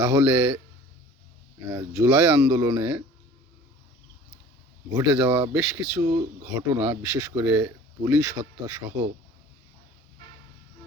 জুলাই আন্দোলনে ঘটে যাওয়া বেশ কিছু ঘটনা, বিশেষ করে পুলিশ হত্যা সহ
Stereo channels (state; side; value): normal; both; correlation 0.46